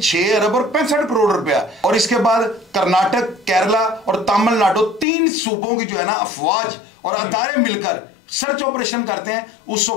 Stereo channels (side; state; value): right; drops out; at 5.1 s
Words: अरब और 65 करोड़ रुपया। और इसके बाद कर्नाटक, केरला और तमिलनाडु, 3 सूबों की जो है ना अफवाज और अदारे मिलकर सर्च ऑपरेशन करते हैं। उस